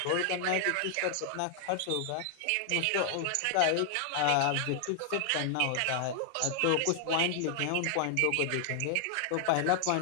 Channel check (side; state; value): both; different; correlation 0.00